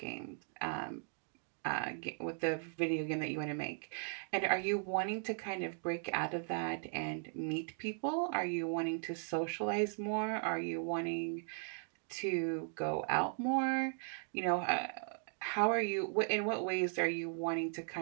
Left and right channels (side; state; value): left; silent; 53 dB below the other